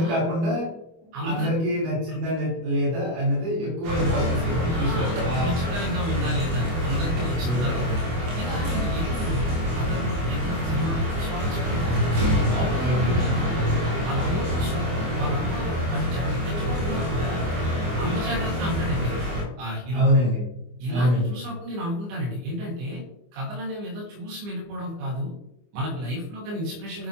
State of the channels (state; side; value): late; left; 24 ms